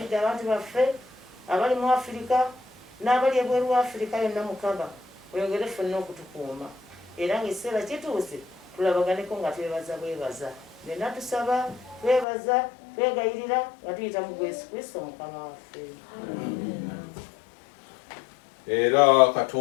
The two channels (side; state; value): right; drops out; at 12.2 s